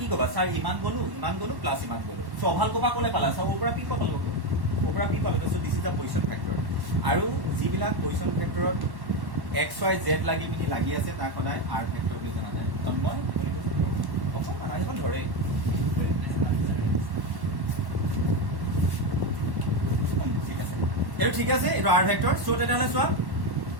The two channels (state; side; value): late; left; 1.1 ms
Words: কি ক'বা? ছাৰ ইমান গ'লো প্লাছ ইমান গ'লো। চ' অভাল ক'বা ক'লে পালা? চাব ওপৰা পি ক'ত পালো? ওপৰা পি পালো। So' this is the position vector. আৰু যিবিলাক পজিশ্যন ফেক্টৰত এক্স ৱাই জেড লাগি পিনি লাগি আছে, তাক সদায় আৰ ভেক্টৰ বুলি জনা যায়। তন্ময় অকণমান আহিব ধৰে। ঠিক আছে, এইটো ঠিক আছে, এইটো আৰ ভেক্টৰ। চ' তেতিয়াহ'লে চোৱা